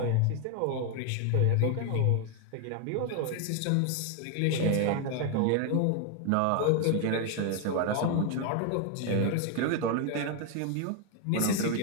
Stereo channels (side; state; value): both; different; correlation 0.01